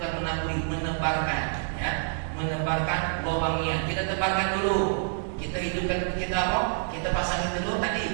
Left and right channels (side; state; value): left; silent; digital silence